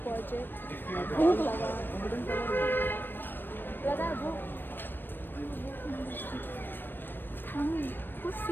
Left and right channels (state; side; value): late; right; 0.095 ms